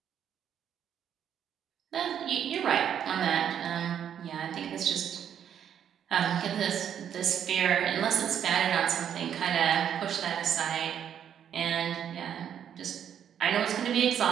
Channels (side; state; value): left; quieter; 9.1 dB